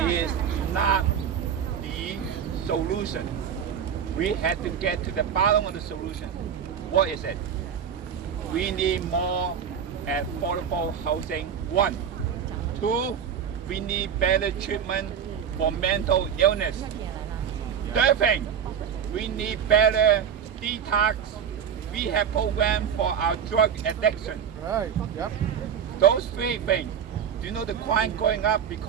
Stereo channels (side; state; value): left; quieter; 8.0 dB